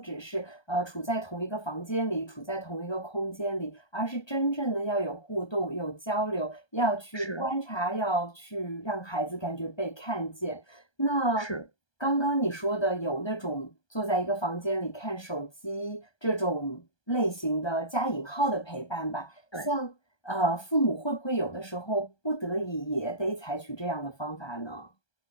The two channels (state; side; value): late; right; 1.2 ms